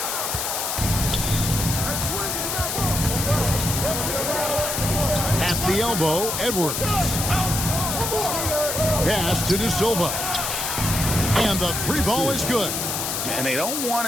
At the elbow, Edwards. Pass to De Silva. And the three ball is good. And they don't want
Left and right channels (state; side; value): noise; left; hiss, 2 dB below the sound